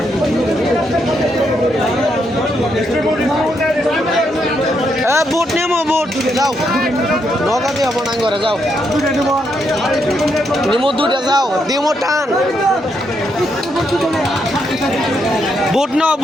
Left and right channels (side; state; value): both; normal; correlation 0.78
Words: বুট নেমো বুট যাও নৌকা দিয়ে হবো না করে যাও নিমো দুটা যাও দিমো টান বুট নাও